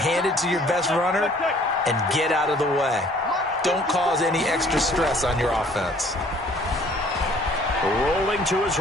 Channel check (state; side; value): normal; both; correlation 0.57